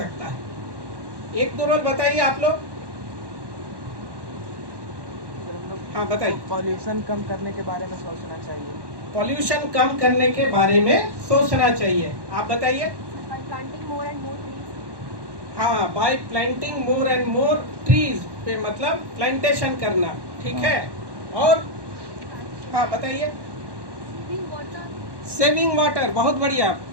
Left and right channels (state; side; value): late; left; 1.1 ms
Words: है? एक दो रोल बताइए आप लोग। हाँ बताइए। पॉल्यूशन कम करने के बारे में सोचना चाहिए। पॉल्यूशन कम करने के बारे में सोचना चाहिए। आप बताइए। planting more and more trees. हाँ, bye planting more and more trees पे मतलब प्लांटेशन करना, ठीक है। और हाँ बताइए। Saving water. सेविंग वाटर, बहुत बढ़िया।